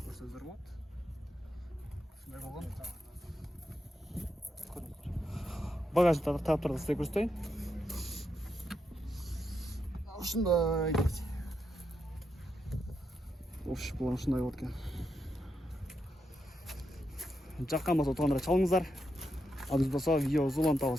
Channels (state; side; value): normal; both; correlation 0.83